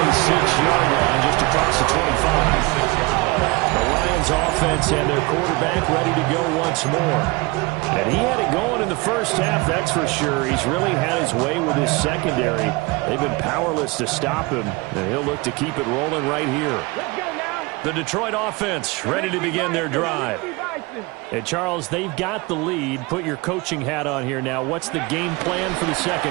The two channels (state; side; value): quieter; left; 24.5 dB